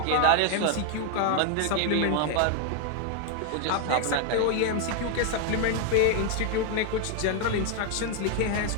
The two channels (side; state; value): both; different; correlation 0.00